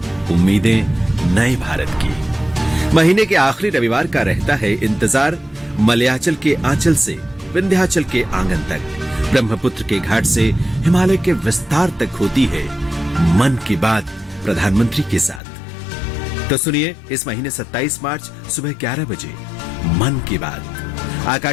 उम्मीदें नए भारत की। महीने के आखिरी रविवार का रहता है इंतजार। मलयाचल के आंचल से विंध्याचल के आंगन तक, ब्रह्मपुत्र के घाट से हिमालय के विस्तार तक होती है मन की बात प्रधानमंत्री के साथ। तो सुनिए इस महीने 27 मार्च सुबह 11 बजे मन की बात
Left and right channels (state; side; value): drops out; right; at 15.4 s